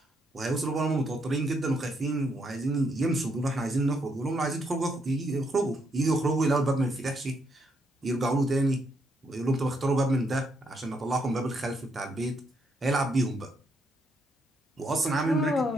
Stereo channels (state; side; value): normal; both; correlation 0.76